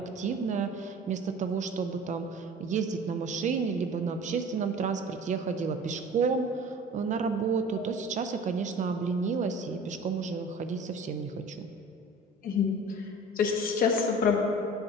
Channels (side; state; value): both; normal; correlation 0.41